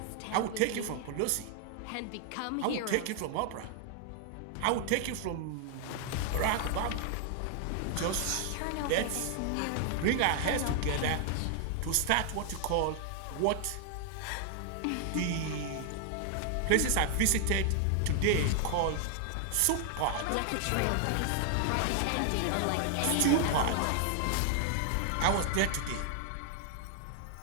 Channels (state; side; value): different; both; correlation 0.00